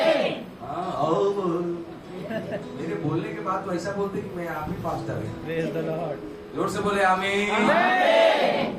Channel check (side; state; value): both; identical; correlation 1.00